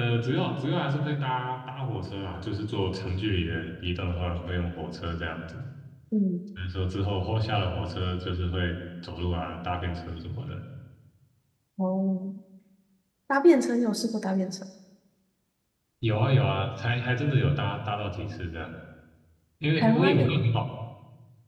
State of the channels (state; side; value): identical; both; correlation 1.00